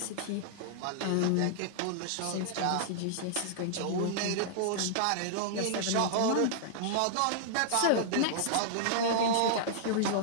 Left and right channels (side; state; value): both; different; correlation -0.01